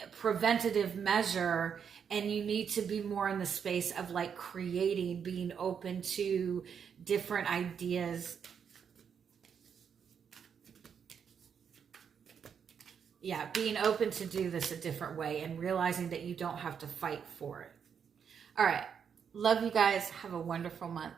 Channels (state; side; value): quieter; left; 7.3 dB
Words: preventative measure, and you need to be more in the space of like creating, being open to different ideas. Yeah, being open to do this a different way and realizing that you don't have to fight for it. All right. Love you guys. Have a wonderful month.